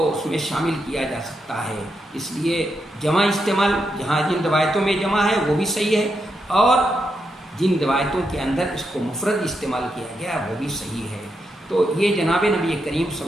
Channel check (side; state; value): both; normal; correlation 0.83